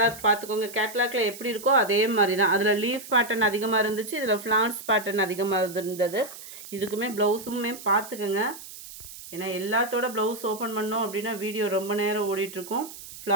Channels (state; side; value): noise; right; hiss, 14 dB below the sound